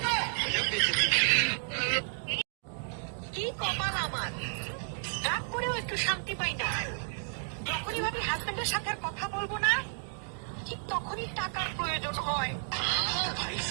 কি কপাল আমার, রাগ করেও একটু শান্তি পাই না। যখনই ভাবি হাজবেন্ডের সাথে আর কথা বলবো না, ঠিক তখনই টাকার প্রয়োজন হয়।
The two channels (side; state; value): left; silent; digital silence